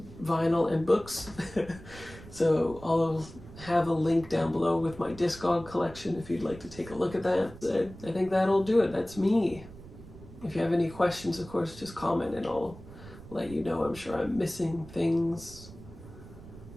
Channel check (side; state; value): right; noise; rumble, 17 dB below the sound